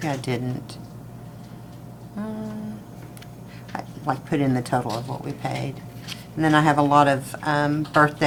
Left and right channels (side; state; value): both; identical; correlation 1.00